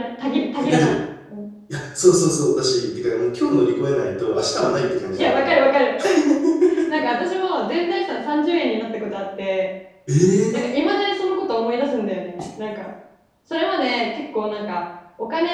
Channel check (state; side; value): identical; both; correlation 1.00